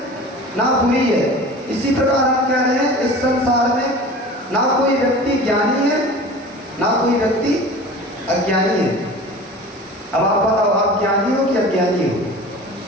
ना बुरी है। इसी प्रकार हम कह रहे हैं इस संसार में ना कोई व्यक्ति ज्ञानी है ना कोई व्यक्ति अज्ञानी है। अब आप बताओ, आप ज्ञानी हो कि अज्ञानी हो?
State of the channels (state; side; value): normal; both; correlation 0.39